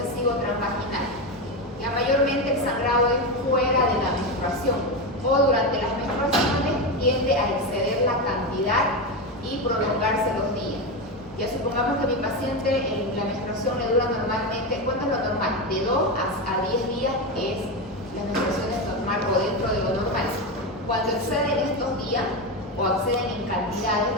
transvaginal. Ya mayormente el sangrado es fuera de la menstruación o durante las menstruaciones tiende a exceder la cantidad y prolongarse los días. Ya supongamos que mi paciente en la menstruación le dura normalmente, ¿cuánto es lo normal? De 2 a 10 días es la menstruación es normal o dentro de lo normal. Cuando exceden estos días o exceden en cantidades,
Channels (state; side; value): normal; both; correlation 0.14